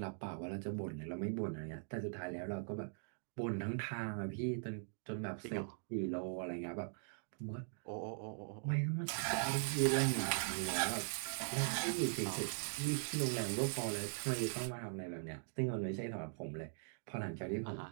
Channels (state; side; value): silent; left; digital silence